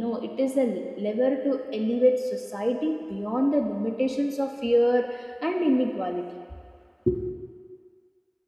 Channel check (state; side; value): identical; both; correlation 1.00